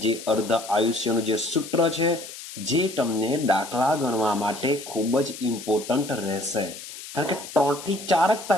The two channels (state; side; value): noise; left; hiss, 13 dB below the sound